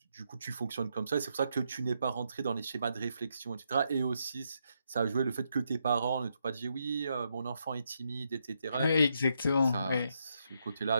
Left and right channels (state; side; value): inverted; both; correlation -0.79